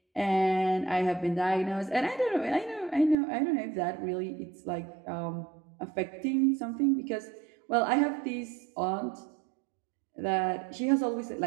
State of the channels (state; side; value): drops out; left; at 3.2 s